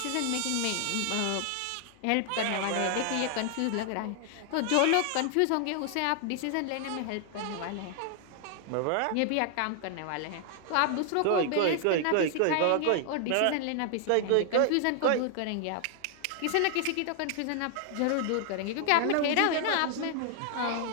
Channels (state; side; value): different; both; correlation 0.00